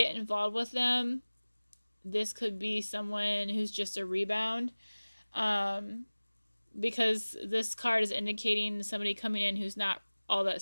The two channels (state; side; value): inverted; both; correlation -1.00